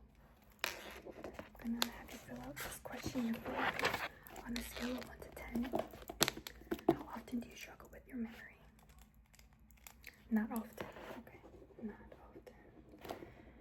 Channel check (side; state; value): both; identical; correlation 1.00